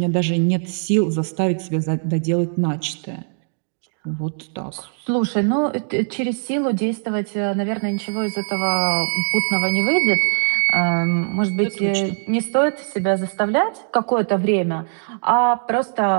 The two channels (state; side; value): silent; left; digital silence